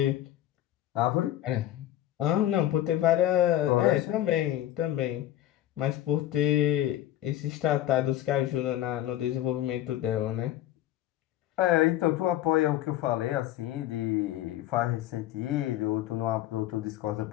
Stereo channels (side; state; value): right; quieter; 13.3 dB